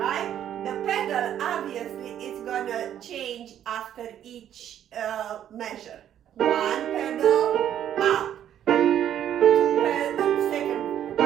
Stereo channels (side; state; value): left; quieter; 10.5 dB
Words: The pedal, obviously, is gonna change after each measure. 1 pedal up, 2 pedal, second